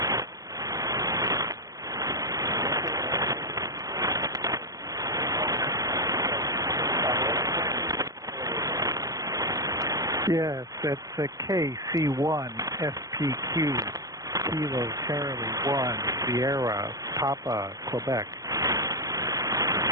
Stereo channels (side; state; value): left; late; 0.17 ms